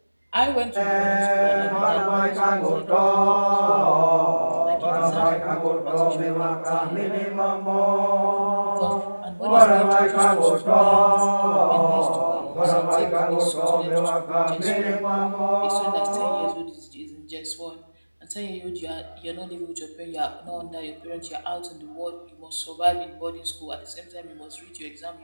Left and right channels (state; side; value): inverted; both; correlation -1.00